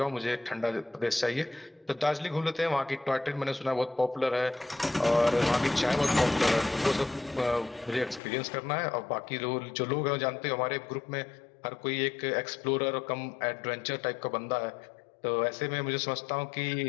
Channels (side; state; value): right; drops out; at 8.2 s